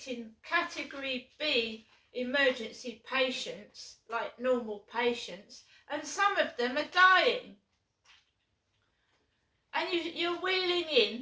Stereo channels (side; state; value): both; identical; correlation 1.00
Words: category B emergency patients like normal patients, and some of them are dying. And you're wheeling